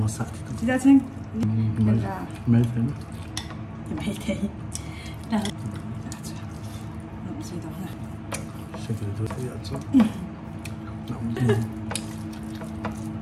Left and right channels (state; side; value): identical; both; correlation 1.00